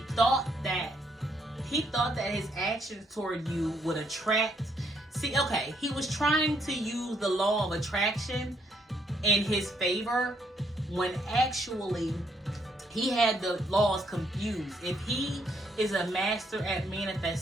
thought that his actions toward you would attract. See, okay, he was trying to use the law of attraction in his favor when actually he had the laws confused. If he is a master at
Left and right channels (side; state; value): both; normal; correlation 0.72